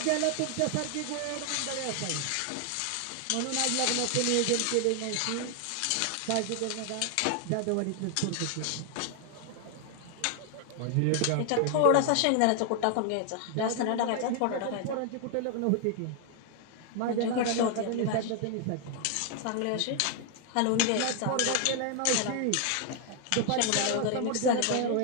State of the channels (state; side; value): different; both; correlation 0.00